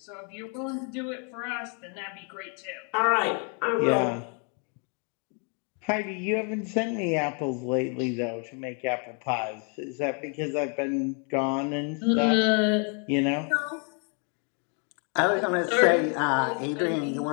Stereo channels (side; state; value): right; quieter; 39.0 dB